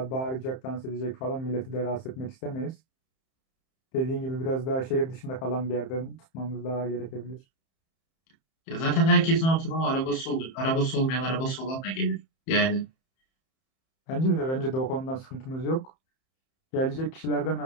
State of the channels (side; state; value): right; late; 31 ms